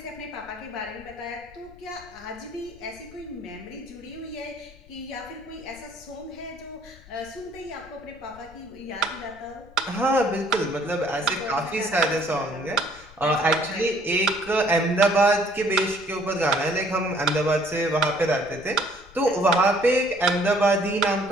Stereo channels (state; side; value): noise; left; rumble, 22 dB below the sound